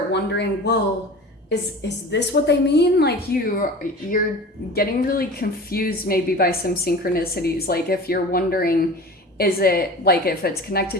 wondering, well, is this what they mean? Like you're getting really confused maybe by some synchronicities. Like if you're wondering, is it like if it's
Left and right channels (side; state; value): both; normal; correlation 0.37